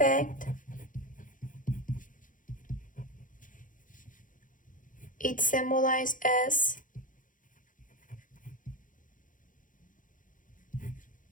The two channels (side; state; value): right; late; 0.38 ms